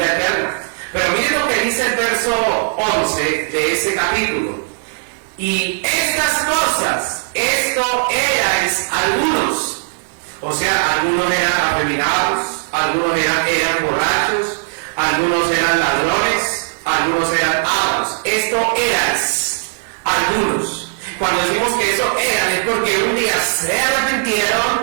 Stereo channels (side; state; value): left; silent; 68 dB below the other